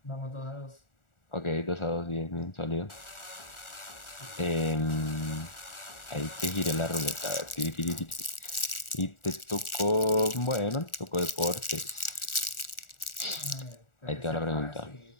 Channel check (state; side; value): late; right; 1.4 ms